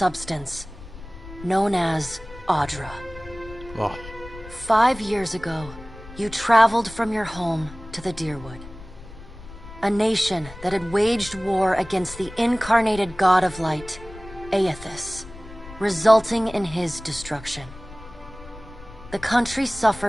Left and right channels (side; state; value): left; noise; rumble, 17 dB below the sound